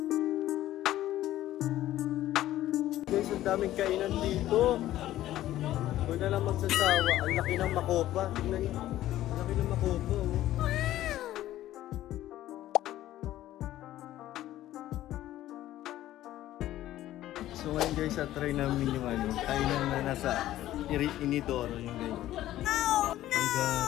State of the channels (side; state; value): right; quieter; 14.0 dB